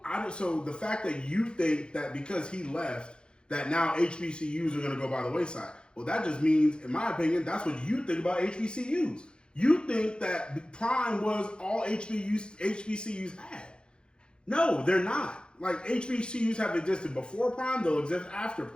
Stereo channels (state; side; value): late; right; 0.052 ms